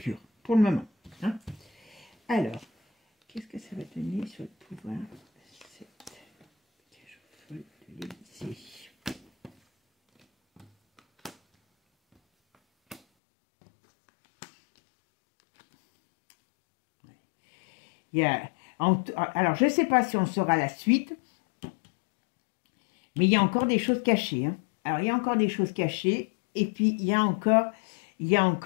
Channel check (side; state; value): right; drops out; at 13.0 s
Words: pour le moment. Hein. Alors, qu'est-ce que ça va donner sur le pouvoir? Alors, je ne sais pas si on saura la suite, mais il y a encore des choses cachées. Hein. Alors, il y a encore des choses cachées. Et puis, alors,